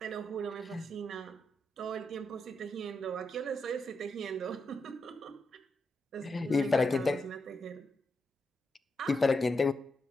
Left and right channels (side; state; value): both; normal; correlation 0.84